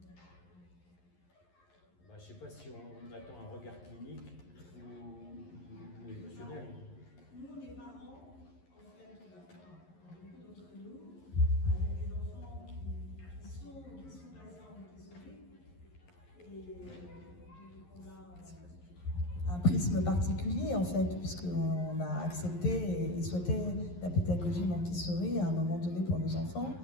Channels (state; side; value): late; right; 11 ms